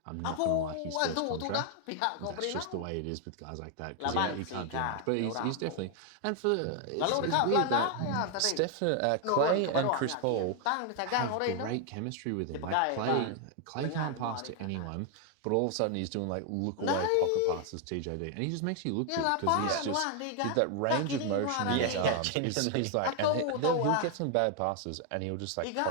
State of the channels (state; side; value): different; both; correlation 0.01